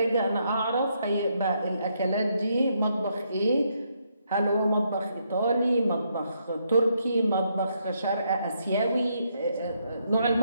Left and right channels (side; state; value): both; inverted; correlation -0.76